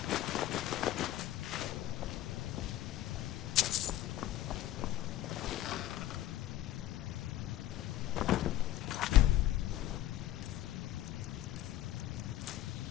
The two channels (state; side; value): quieter; right; 13.7 dB